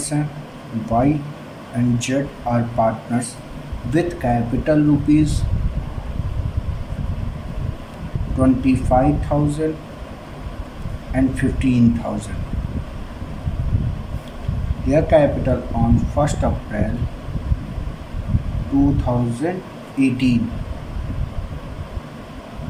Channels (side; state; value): both; identical; correlation 1.00